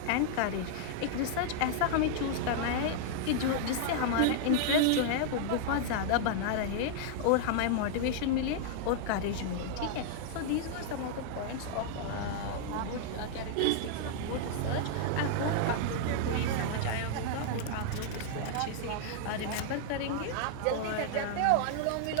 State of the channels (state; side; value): different; both; correlation -0.01